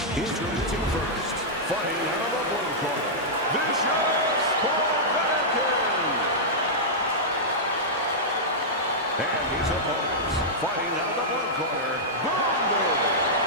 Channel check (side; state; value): both; normal; correlation -0.10